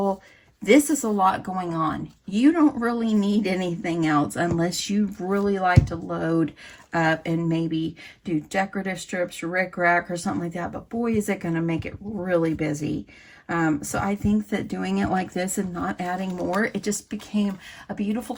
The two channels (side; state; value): both; identical; correlation 1.00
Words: This is a lot going on. You don't really need anything else unless you really like to load up and maybe do decorative strips, rickrack, or something like that. But boy, is it going to make it really busy. So I think that doing it like this and not adding more, it just became a beautiful